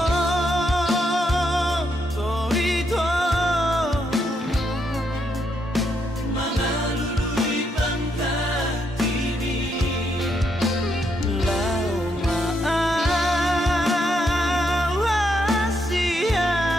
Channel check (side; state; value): both; normal; correlation 0.77